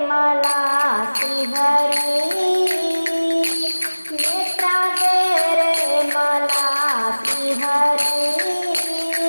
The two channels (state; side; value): inverted; both; correlation -1.00